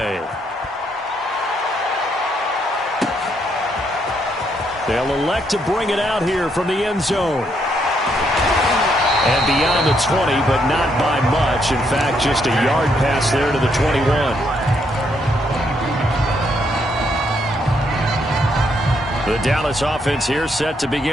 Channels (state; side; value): normal; both; correlation 0.74